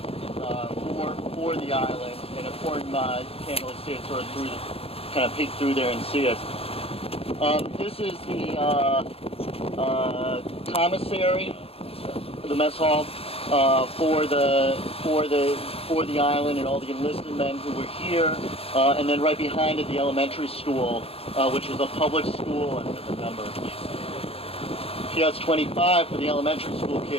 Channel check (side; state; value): right; late; 0.28 ms